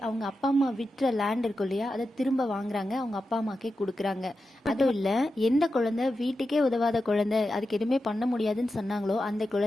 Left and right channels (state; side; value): normal; both; correlation 0.90